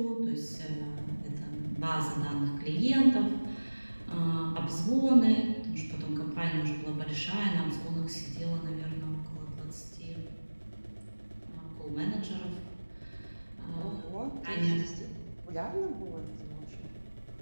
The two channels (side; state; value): both; inverted; correlation -1.00